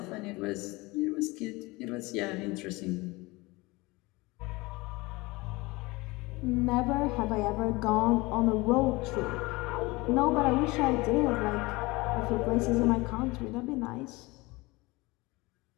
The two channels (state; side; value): quieter; right; 23.0 dB